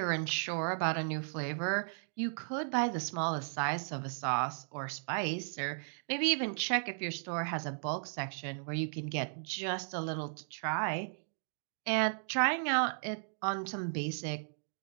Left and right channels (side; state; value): left; silent; digital silence